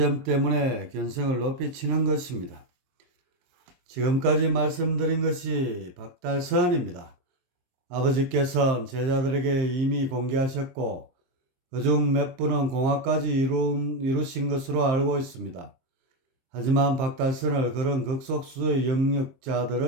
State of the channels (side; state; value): left; late; 23 ms